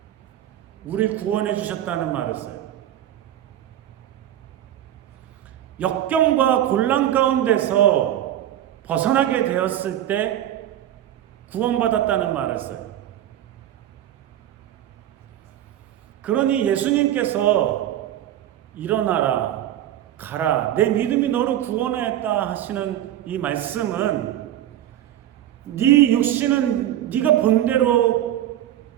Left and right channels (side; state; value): left; quieter; 12.1 dB